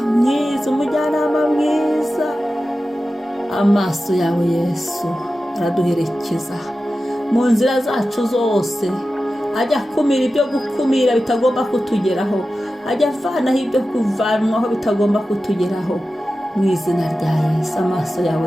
mwiza. Amaso yawe Yesu araduherekeza mu nzira zacu zose, ajya akumira ibyo gukumira bitagomba kutugeraho, ajya avanaho ibyo kuvanwaho bitagomba kutugeraho. mu izina rya Yesu. Amaso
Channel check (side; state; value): both; normal; correlation 0.93